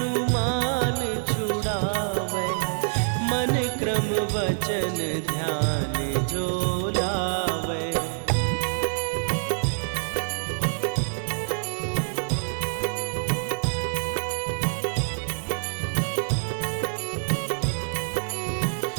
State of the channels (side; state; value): left; silent; digital silence